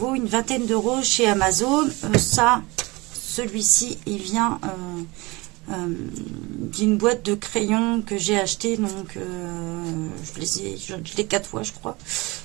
une vingtaine d'euros chez Amazon. Celui-ci, il vient d'une boîte de crayons que j'ai acheté, donc je l'ai 4 fois je crois,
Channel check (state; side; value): quieter; left; 23.6 dB